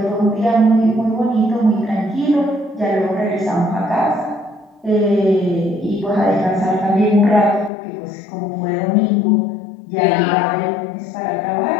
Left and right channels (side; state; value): right; drops out; at 7.7 s